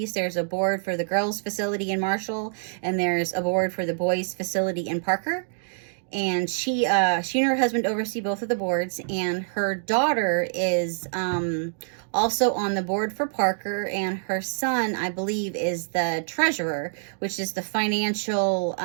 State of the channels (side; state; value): left; silent; digital silence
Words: There's a board for the girls' facility in Marshall, and there's a board for the boys' facility in Parker. And she and her husband oversee both of the boards, and her daughter is also on the board for Parker, and her son, I believe, is the treasurer, which is the financial,